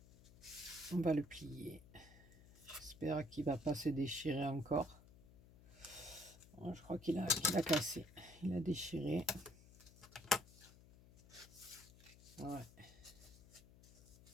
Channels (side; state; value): left; noise; hum, 21 dB below the sound